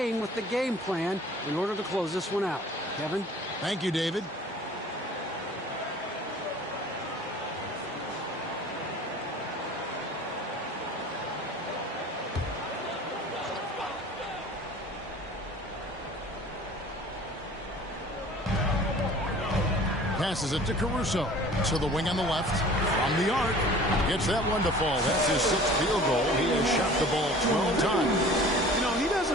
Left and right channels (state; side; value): normal; both; correlation 0.46